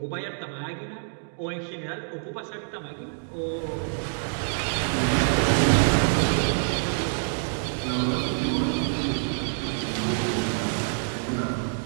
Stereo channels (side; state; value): left; silent; digital silence